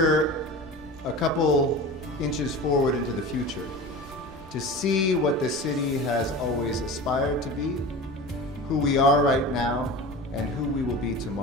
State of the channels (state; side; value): normal; both; correlation 0.33